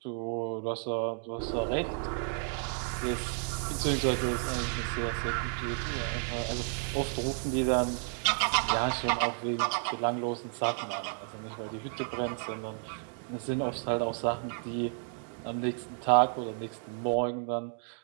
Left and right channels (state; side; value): silent; left; 56 dB below the other